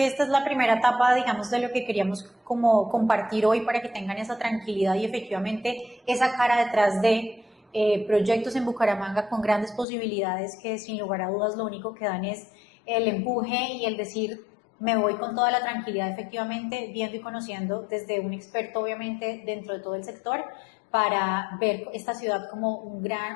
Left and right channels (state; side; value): drops out; right; at 9.9 s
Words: esta es la primera etapa, digamos, de lo que queríamos como compartir hoy para que tengan esa tranquilidad y efectivamente esa cara detrás de proyectos en Bucaramanga con grandes posibilidades que sin lugar a dudas lo único que dan es el empuje y el decir me voy con toda la tranquilidad efectivamente viendo y conociendo desde un experto obviamente dentro de todo el sector para ver esta ciudad como